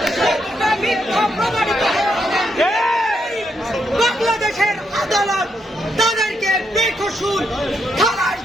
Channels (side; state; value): both; normal; correlation 0.79